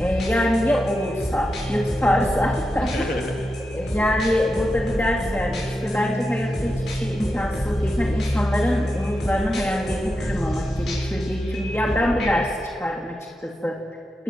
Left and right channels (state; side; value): normal; both; correlation 0.89